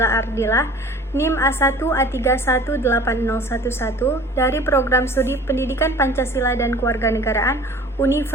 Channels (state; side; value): normal; both; correlation 0.46